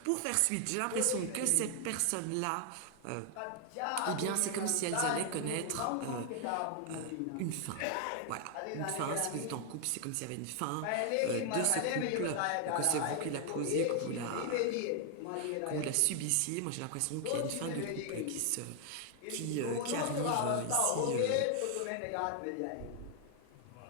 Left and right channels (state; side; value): different; both; correlation 0.00